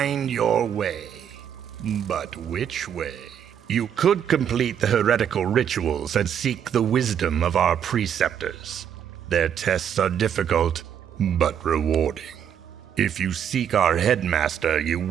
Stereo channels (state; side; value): quieter; left; 8.8 dB